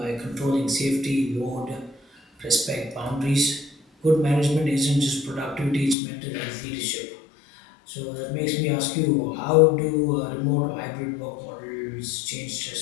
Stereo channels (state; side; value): drops out; right; at 6.0 s